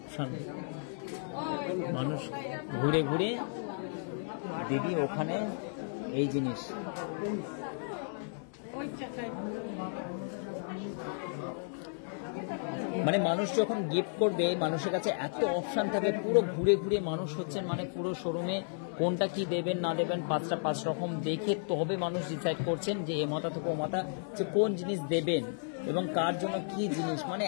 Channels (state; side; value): silent; right; 56 dB below the other